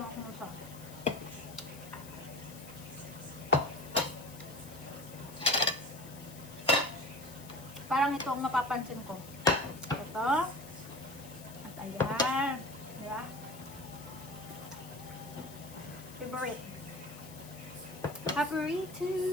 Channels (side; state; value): left; noise; hiss, 17 dB below the sound